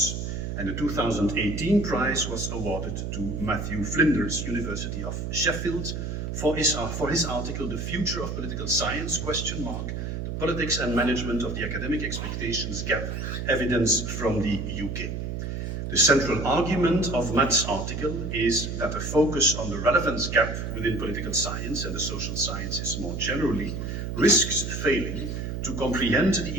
and the 2018 prize was awarded to Matthew Flinders, University of Sheffield, for his article, The Future of Political Science, the politics and management of the academic expectations gap, evidence from the UK. The central argument of Matt's article is that a focus on the relevance gap within political science and the social sciences more generally risks failing to comprehend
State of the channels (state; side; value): noise; right; hum, 4 dB below the sound